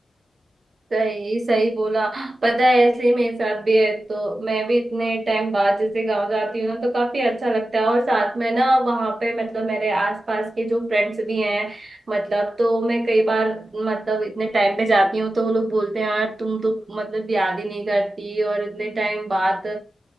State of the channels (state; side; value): normal; both; correlation 0.93